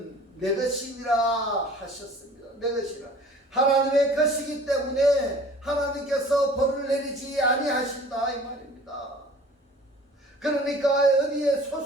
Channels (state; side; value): normal; both; correlation 0.47